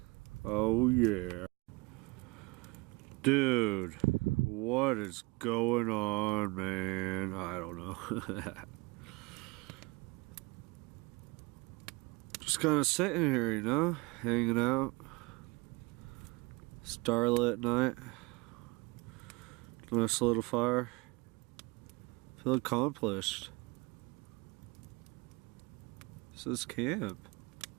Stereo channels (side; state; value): left; quieter; 25.7 dB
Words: Oh yeah. Dude, what is going on, man? I don't know. Just kind of sitting here, you know, hanging out. Starlit night. Nice little fire. Feel accomplished. This is camp.